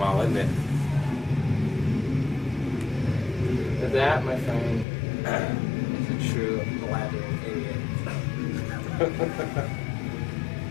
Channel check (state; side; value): drops out; right; at 4.9 s